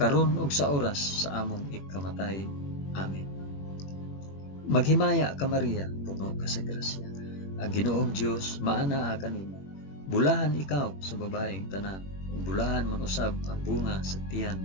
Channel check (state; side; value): late; right; 21 ms